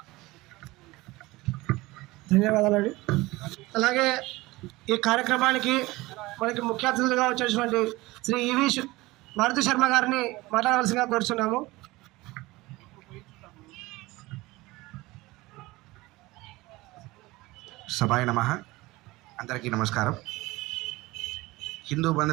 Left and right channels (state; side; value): quieter; left; 20.5 dB